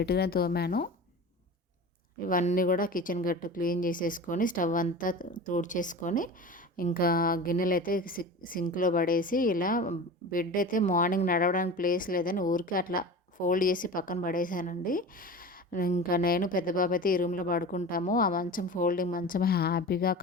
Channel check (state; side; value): normal; both; correlation 0.33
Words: తోమాను. ఇవన్నీ కూడా కిచెన్ గట్టు క్లీన్ చేసేసుకొని, స్టవ్ అంతా తుడిచేసుకొని, ఇంకా గిన్నెలైతే సింక్‌లో పడేసి, ఇలా బెడ్ అయితే మార్నింగ్ నడవడానికి ప్లేస్ లేదని ఊరికే అట్లా ఫోల్డ్ చేసి పక్కన పడేసానండి. ఇంకా నేను పెద్ద బాబు అయితే ఈ రూమ్‌లో పడుకుంటాము. ఆ మంచం ఫోల్డింగ్ మంచం హ్యాపీగా,